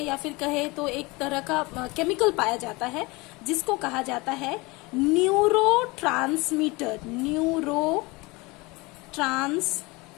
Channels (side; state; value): right; quieter; 24.4 dB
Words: फिर कहे तो एक तरह का केमिकल पाया जाता है, जिसको कहा जाता है न्यूरोट्रांसमीटर।